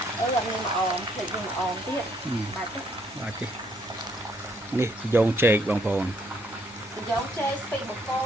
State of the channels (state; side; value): normal; both; correlation 0.69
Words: អត់មានអមភ្លេចយើងអមទៀតបាច់ទេនេះត្រយងចេកបងប្អូនត្រយងចេកស្ពីបកោ